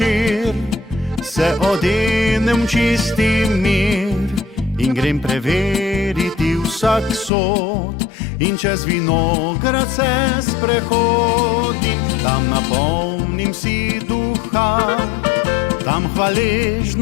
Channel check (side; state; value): right; drops out; at 7.3 s